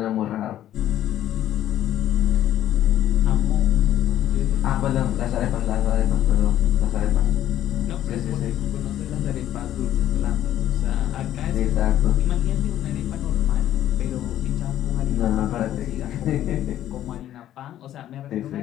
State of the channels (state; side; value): quieter; right; 12.2 dB